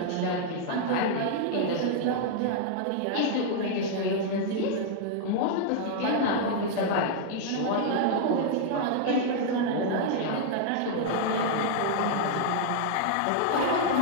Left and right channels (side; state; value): both; different; correlation -0.01